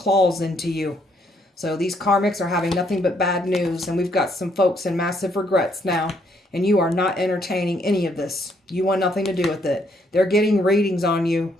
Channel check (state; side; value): normal; both; correlation 0.71